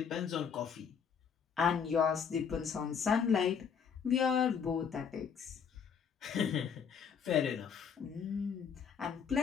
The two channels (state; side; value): quieter; right; 6.9 dB